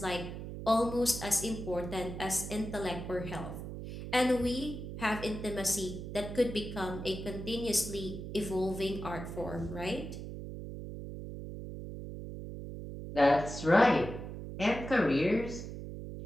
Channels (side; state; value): right; noise; hum, 8 dB below the sound